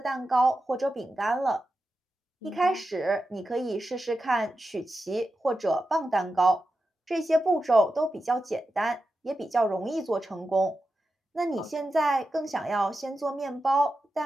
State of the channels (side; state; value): both; normal; correlation 0.90